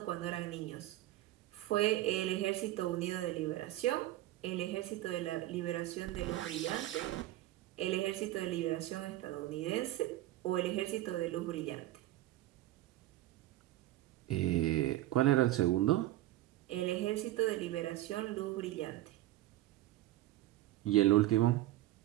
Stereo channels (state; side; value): quieter; left; 15.4 dB